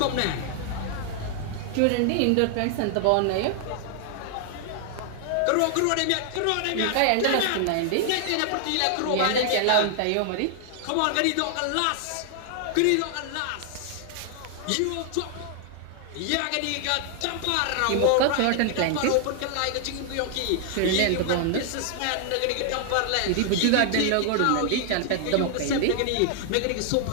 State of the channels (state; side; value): different; both; correlation 0.00